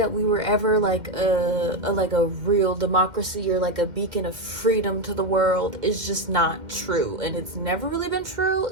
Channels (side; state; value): left; late; 2.1 ms